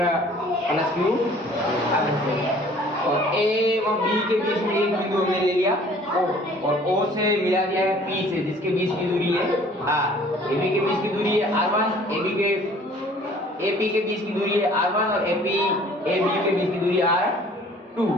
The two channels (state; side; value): normal; both; correlation 0.53